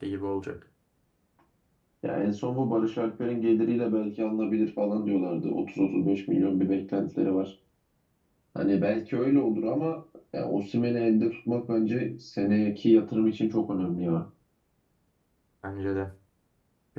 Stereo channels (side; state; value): both; identical; correlation 1.00